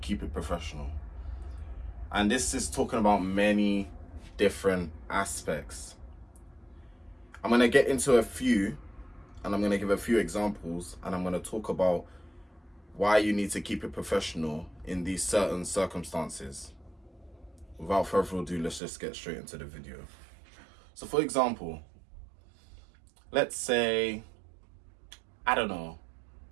Keep It Professional. And this is talking about many different aspects. I'm going to get into a few, and I'm going to give a few examples, and I'm going to talk about why you need to keep it professional in these certain circumstances. Without further ado, let's just get straight into the video. So for example, let's say, I don't know,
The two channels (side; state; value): left; drops out; at 18.8 s